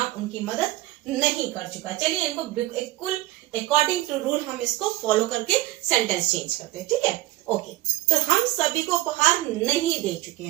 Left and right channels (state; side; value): quieter; left; 17.5 dB